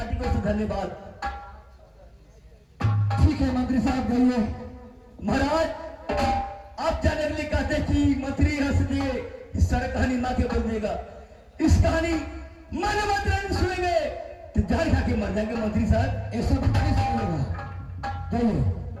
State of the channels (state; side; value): identical; both; correlation 1.00